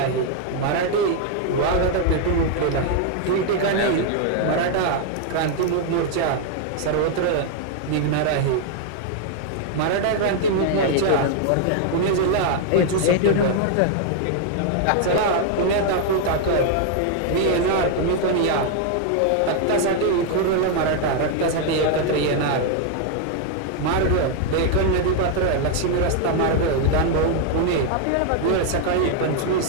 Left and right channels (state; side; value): different; both; correlation 0.00